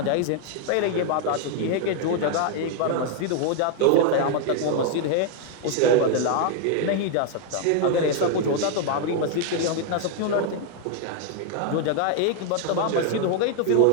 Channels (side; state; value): both; different; correlation 0.00